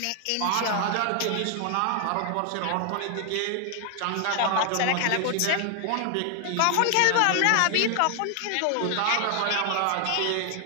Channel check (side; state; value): both; different; correlation 0.00